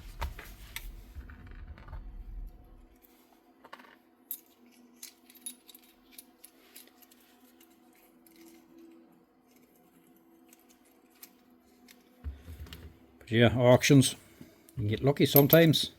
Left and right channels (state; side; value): identical; both; correlation 1.00